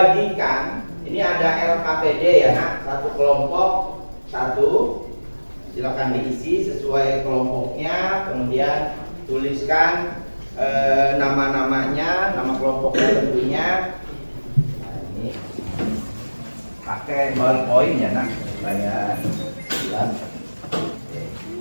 Ini ada LKPD ya nak, satu kelompok satu. Silakan diisi sesuai kelompoknya, kemudian tuliskan nama-namanya, nama kelompoknya tentunya. Nah, ini pakai ballpoint ya nak, supaya jelas.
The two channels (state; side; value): inverted; both; correlation -1.00